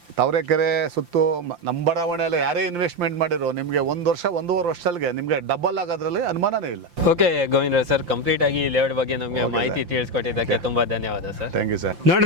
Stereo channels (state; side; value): late; left; 5.8 ms